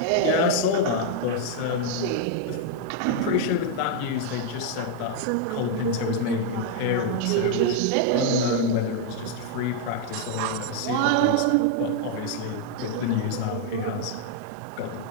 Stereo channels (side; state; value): both; different; correlation 0.00